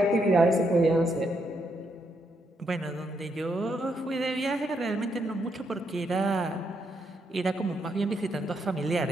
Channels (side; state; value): both; normal; correlation 0.77